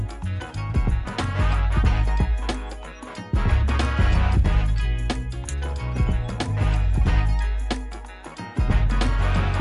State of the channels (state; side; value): identical; both; correlation 1.00